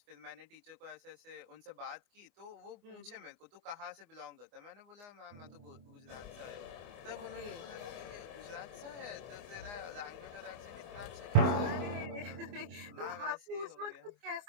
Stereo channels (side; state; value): left; late; 24 ms